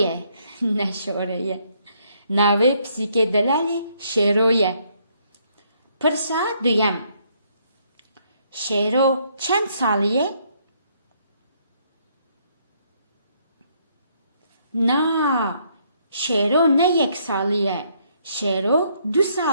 نە شۆرەیە. ناوەی پسیکە دەلالێ شێرۆیە. پرسا دوویەم. شێرۆ چەند ساڵیە؟ نا شێرۆ نە 1 ساڵیە. شێرۆ 2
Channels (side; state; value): both; inverted; correlation -0.70